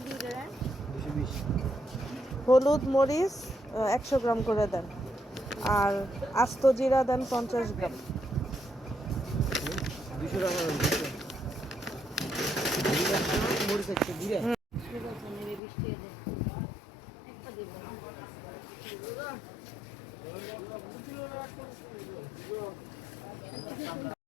দিয়ে দেন? হলুদ মরিচ 100 গ্রাম করে দেন, আর আস্ত জিরা দেন 50 গ্রাম।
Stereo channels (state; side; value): drops out; right; at 15.6 s